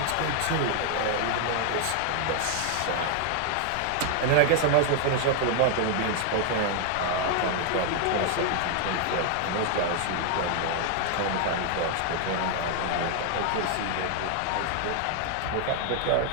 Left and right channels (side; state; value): both; different; correlation 0.00